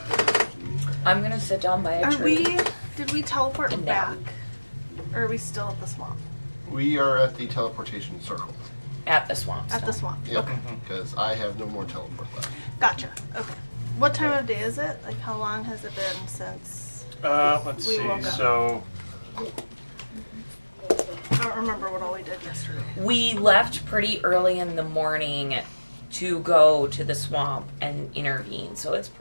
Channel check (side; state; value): both; inverted; correlation -1.00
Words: I'm gonna sit down by a tree. Did we teleport And back? now. Or are we still at the swamp? We are at the teleportation circle. At the swamp. At the stone. swamp. Yep. Okay. Because I have no more teleport left. Gotcha. Okay. What time of day is it? Like how long has it been since Let's We see. woke up. So I don't remember what all we did yesterday. We left pretty early in the morning to go to the swamp and intervene, so it's